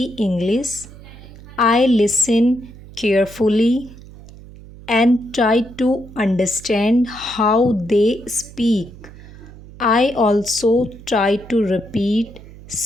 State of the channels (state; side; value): noise; right; hum, 18 dB below the sound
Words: English. I listen carefully and try to understand how they speak. I also try to repeat